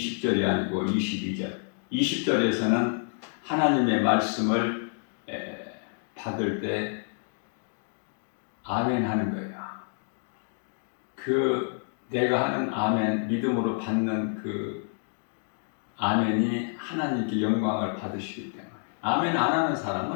아니고 22절. 20절에서는 하나님의 말씀을 받을 때 아멘 하는 거예요. 그 내가 하는 아멘, 믿음으로 받는 그 아멘이 하나님께 영광을 받으시기 때문에. 아멘 안 하는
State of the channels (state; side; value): silent; right; 59 dB below the other